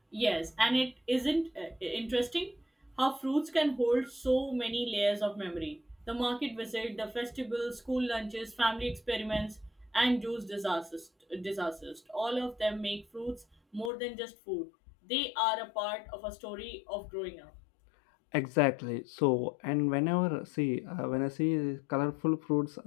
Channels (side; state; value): right; drops out; at 13.9 s